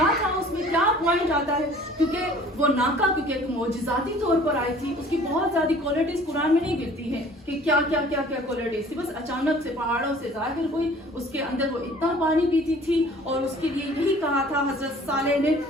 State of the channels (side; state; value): both; normal; correlation 0.51